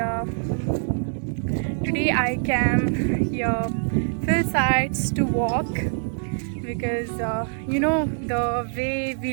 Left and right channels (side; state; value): left; silent; digital silence